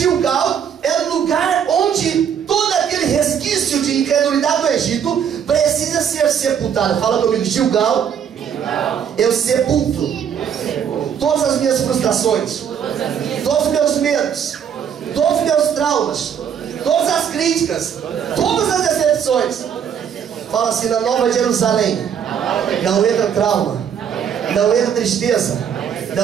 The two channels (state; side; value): quieter; left; 8.2 dB